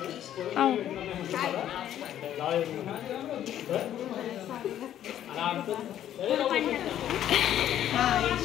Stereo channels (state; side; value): quieter; right; 11.2 dB